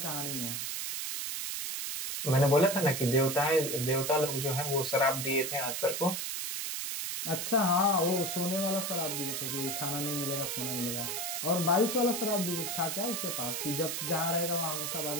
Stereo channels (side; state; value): right; noise; hiss, 3 dB below the sound